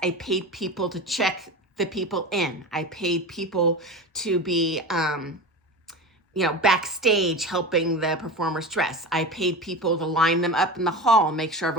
I paid people to check the people in. I paid people to be backstage helping the performers dress. I paid people to line them up in the hall, make sure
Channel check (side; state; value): both; normal; correlation 0.28